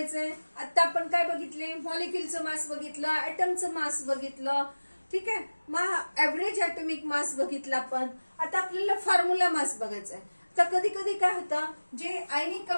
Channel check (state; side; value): inverted; both; correlation -1.00